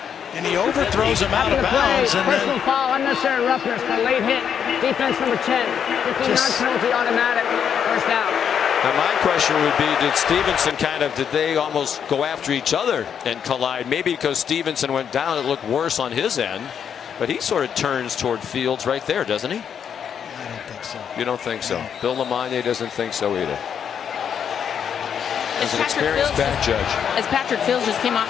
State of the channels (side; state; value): right; quieter; 8.0 dB